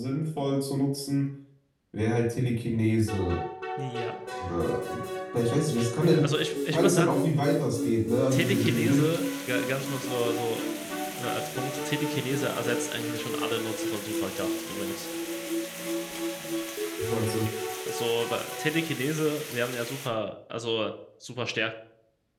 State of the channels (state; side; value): identical; both; correlation 1.00